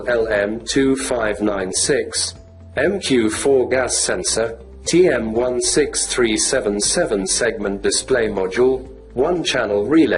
LM2596, MQ4 gas sensor, TM16377 segment display module, 1-channel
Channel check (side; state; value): both; identical; correlation 1.00